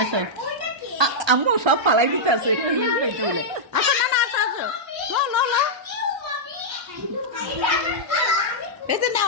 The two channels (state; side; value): late; left; 1.3 ms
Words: আচ্ছা ওইটা কি আম্মু সব ফালাই দিতে আছে পেটে বলে। আচ্ছা না না আসো আসো লো পেটে